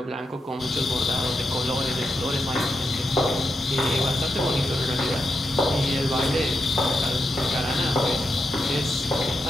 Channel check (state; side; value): normal; both; correlation 0.85